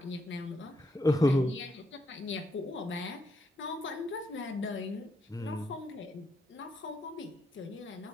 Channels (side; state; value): both; normal; correlation 0.78